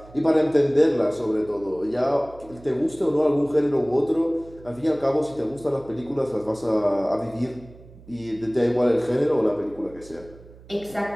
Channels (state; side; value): noise; right; hum, 21 dB below the sound